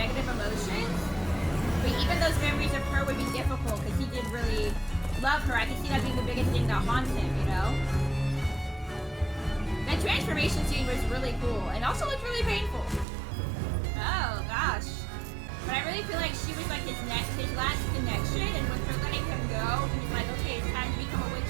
emotions. But even those memories of her would be difficult because he did really love her. I can see that being the biggest thing that haunts him, you know? That transformation scene was really cool and also looked really painful. Oh, gosh. But I really feel like she was like his last connection, and with her letting him go, he was like, okay, it's time to become a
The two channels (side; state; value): left; drops out; at 13.1 s